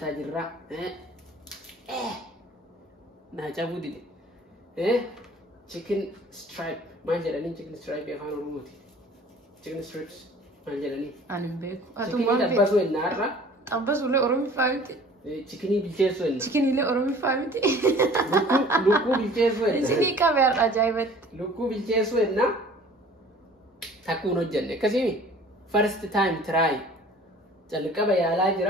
جرا ناجابو دي chicken stripe ما جلني chicken stripe يفعل روموتي chicken strips ما جلني أنا بيكو chicken دبسوا النار أبس ولا أرومي فاهمتي chicken بالجسون chicken اللي أرومي فاهمتي لوكو بالجسون سيدي كاميرا أجايبت لوكو بالجسون نا تكونوا جنة كسيمي first time try جلك بيا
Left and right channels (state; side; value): normal; both; correlation 0.49